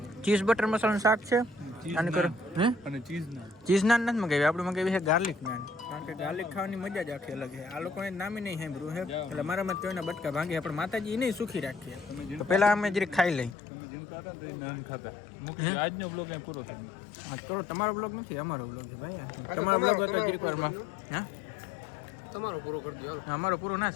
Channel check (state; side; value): drops out; right; at 13.6 s